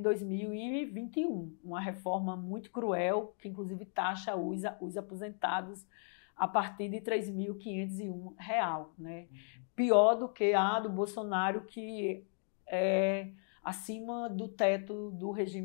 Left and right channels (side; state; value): right; silent; 54 dB below the other